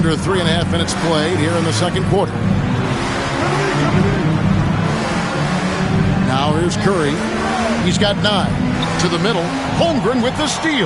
3.5 minutes played here in the second quarter. Now here's Curry. He's got 9. To the middle. Holmgren with the steal.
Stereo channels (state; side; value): identical; both; correlation 1.00